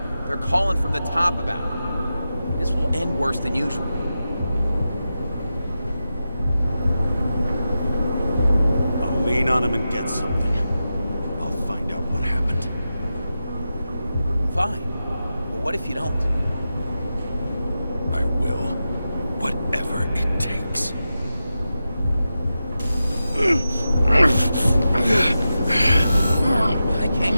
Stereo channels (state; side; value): inverted; both; correlation -0.91